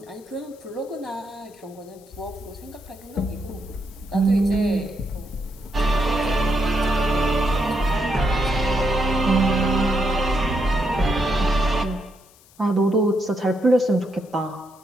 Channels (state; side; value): noise; left; hiss, 27 dB below the sound